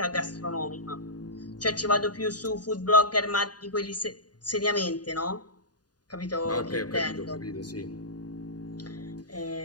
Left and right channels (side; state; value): right; late; 0.69 ms